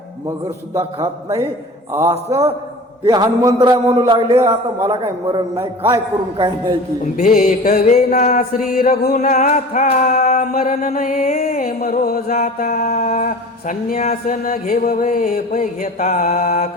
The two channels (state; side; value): normal; both; correlation 0.38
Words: मगर सुद्धा खात नाही, असं ते हनुमंतराय म्हणू लागले। आता मला काही मरण नाही, काय करून काय नाही की भेटवे ना श्री रघुनाथा, मरण नये मरो जाता। संन्यास न घेववे पै घेता,